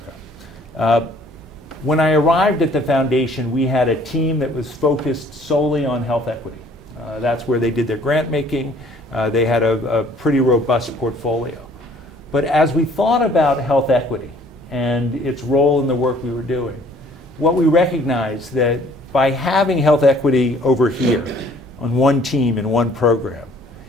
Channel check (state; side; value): normal; both; correlation 0.57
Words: When I arrived at the foundation, we had a team that was focused solely on health equity. That's where they did their grant making. They had a pretty robust portfolio. But as we thought about health equity and its role in the work we were doing, what we recognized that by having health equity over here on one team in one program,